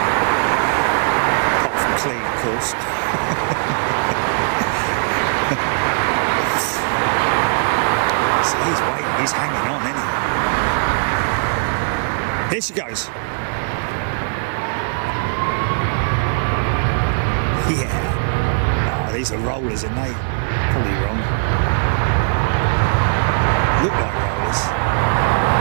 Apart from clean, of course. See, he's waiting, he's hanging on, isn't he? Here she goes. Yeah. Oh, these are rollers, aren't they? Probably wrong. Look like rollers.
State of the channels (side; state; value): left; silent; 66 dB below the other